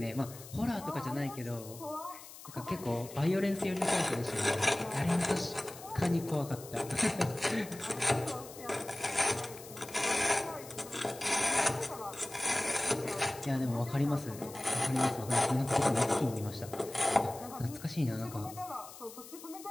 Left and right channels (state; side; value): noise; left; hiss, 16 dB below the sound